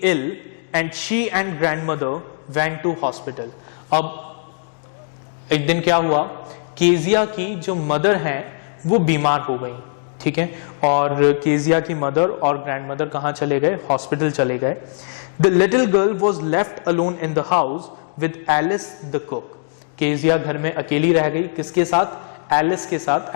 ill and she and grandmother went to hospital. अब एक दिन क्या हुआ, केजिया की जो मदर है वो बीमार हो गई, ठीक है, और केजिया की मदर और ग्रैंडमदर कहाँ चले गए, हॉस्पिटल चले गए। The little girl was left alone in the house with Alice the cook. Kezia घर में अकेली रह गई, किसके साथ, एलिस के साथ,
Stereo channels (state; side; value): silent; right; digital silence